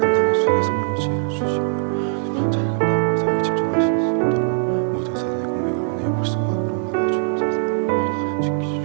감당하며 사역에 집중하실 수 있도록 모든 사단의 공격을 은혜의 불성각으로 막아 주옵소서.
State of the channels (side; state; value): left; silent; digital silence